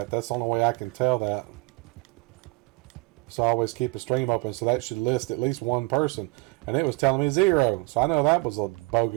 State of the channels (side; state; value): left; quieter; 24.8 dB